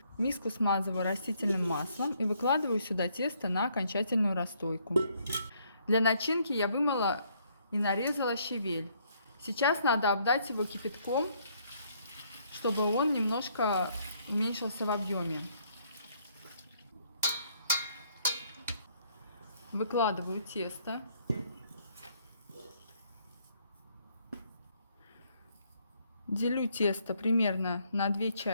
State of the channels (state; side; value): inverted; both; correlation -0.68